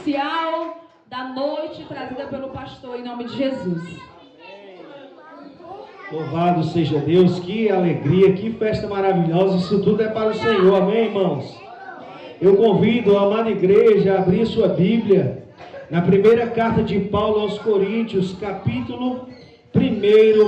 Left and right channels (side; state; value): both; identical; correlation 1.00